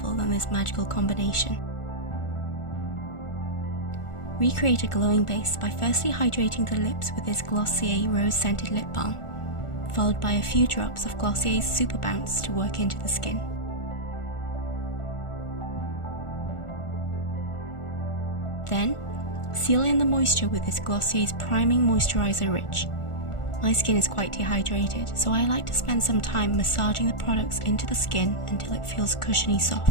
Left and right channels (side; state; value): right; late; 1.4 ms